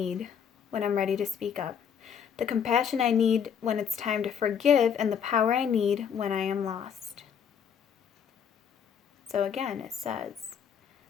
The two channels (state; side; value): quieter; right; 7.7 dB